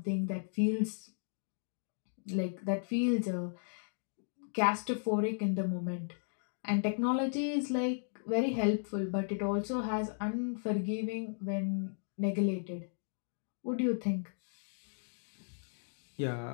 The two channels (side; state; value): right; silent; digital silence